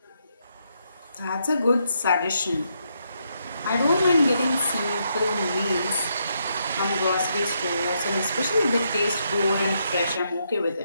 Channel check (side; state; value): both; inverted; correlation -0.78